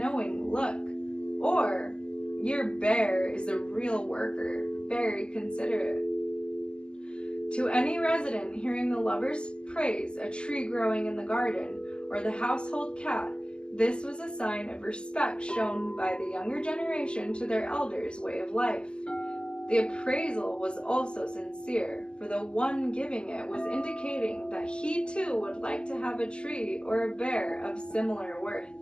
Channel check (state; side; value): late; right; 0.048 ms